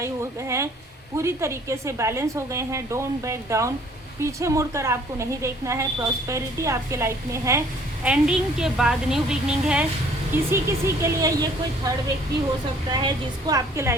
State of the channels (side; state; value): both; normal; correlation 0.57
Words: हो गए हैं, पूरी तरीके से बैलेंस हो गए हैं। डोंट बैक डाउन, पीछे मुड़कर आपको नहीं देखना है। प्रॉस्पेरिटी आपके लाइफ में है, एंडिंग के बाद न्यू बिगनिंग है। किसी के लिए ये कोई थर्ड व्यक्ति हो सकता है जिसको आपके